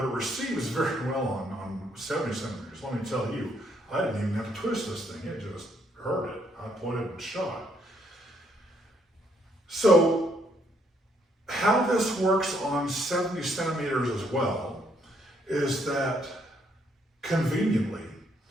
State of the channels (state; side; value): normal; both; correlation 0.71